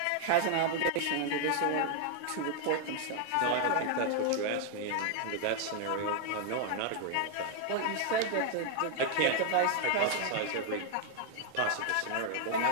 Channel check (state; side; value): different; both; correlation 0.00